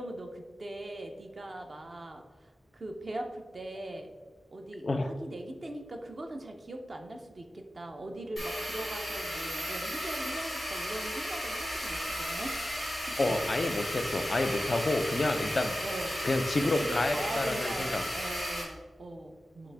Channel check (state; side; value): normal; both; correlation 0.94